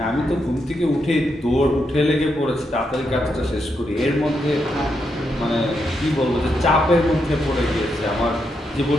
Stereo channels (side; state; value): both; normal; correlation 0.82